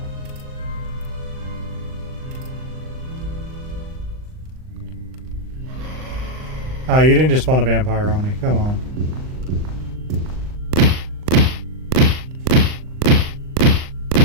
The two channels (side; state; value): left; late; 39 ms